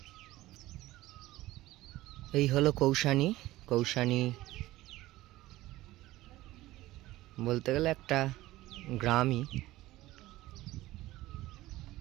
এই হলো কৌশানী বলতে গেলে একটা গ্রামই।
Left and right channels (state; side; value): quieter; left; 17.1 dB